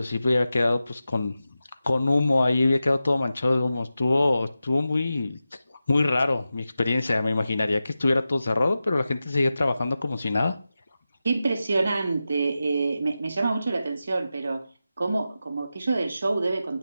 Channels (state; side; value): inverted; both; correlation -0.92